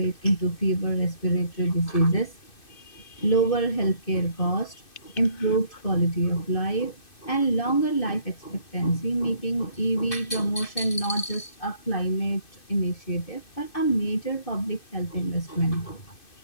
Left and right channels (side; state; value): right; late; 2.6 ms